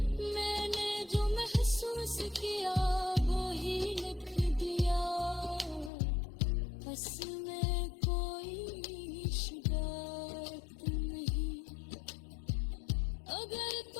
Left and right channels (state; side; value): drops out; right; at 5.9 s